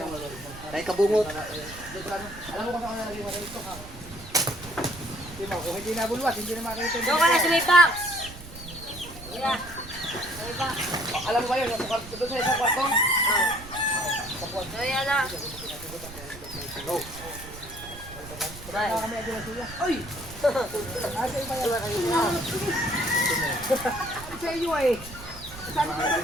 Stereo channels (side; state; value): right; noise; rumble, 15 dB below the sound